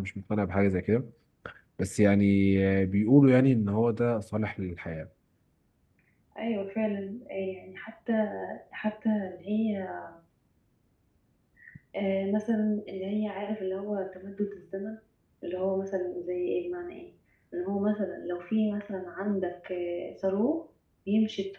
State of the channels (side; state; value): both; identical; correlation 1.00